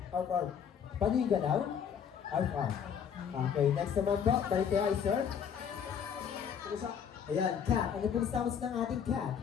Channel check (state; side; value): quieter; right; 7.8 dB